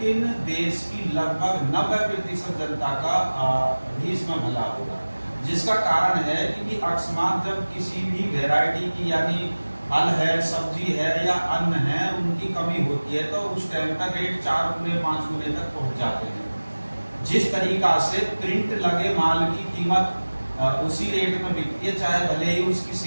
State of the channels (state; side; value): inverted; both; correlation -1.00